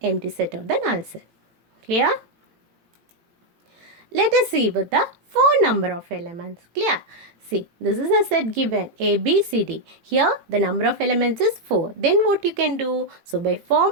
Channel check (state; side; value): late; left; 18 ms